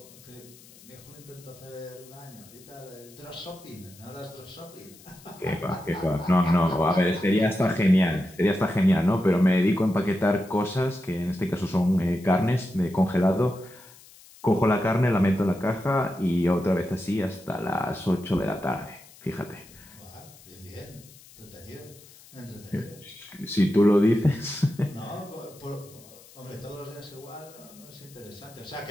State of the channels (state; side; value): noise; left; hiss, 23 dB below the sound